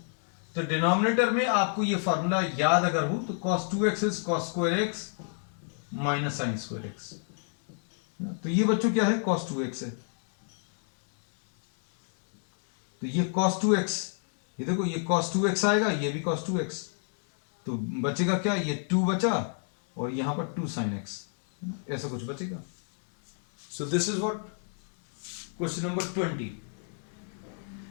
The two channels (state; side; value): silent; right; 58 dB below the other